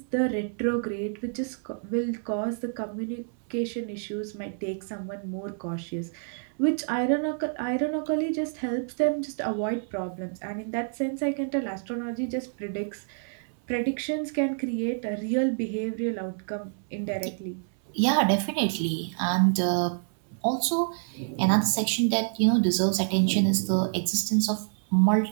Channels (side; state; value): left; silent; 59 dB below the other